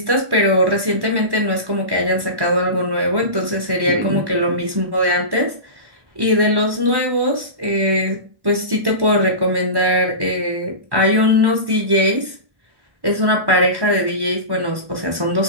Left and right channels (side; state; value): left; late; 1.1 ms